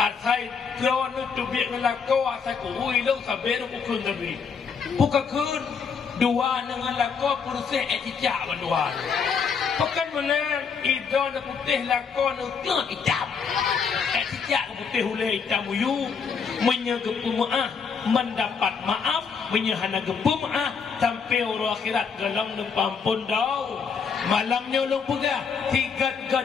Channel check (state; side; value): quieter; right; 6.0 dB